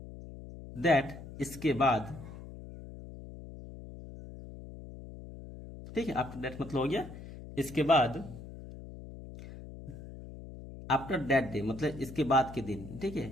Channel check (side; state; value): left; noise; hum, 13 dB below the sound